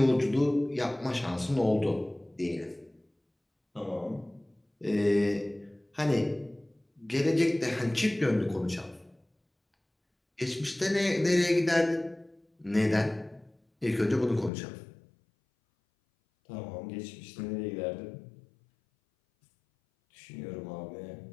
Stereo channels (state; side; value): drops out; right; at 14.5 s